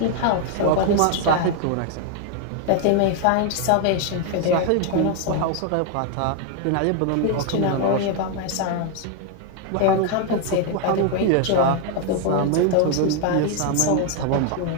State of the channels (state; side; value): different; both; correlation 0.00